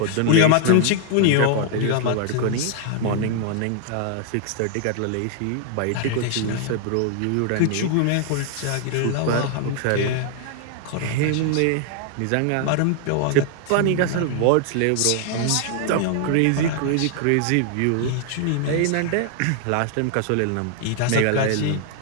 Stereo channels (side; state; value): both; different; correlation 0.00